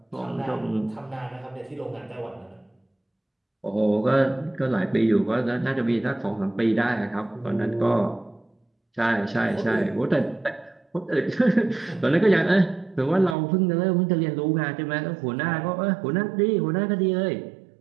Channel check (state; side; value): drops out; left; at 13.4 s